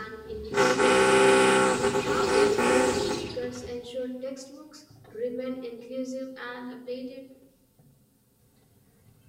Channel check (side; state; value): both; identical; correlation 1.00